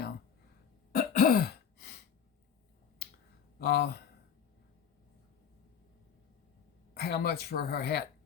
How much for her hat?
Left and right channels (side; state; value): right; quieter; 7.7 dB